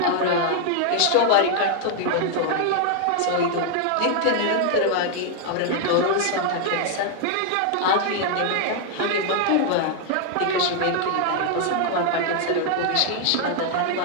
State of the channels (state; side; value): different; both; correlation 0.00